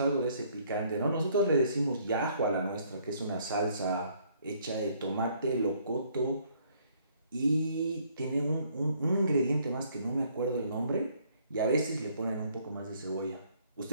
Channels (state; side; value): inverted; both; correlation -0.64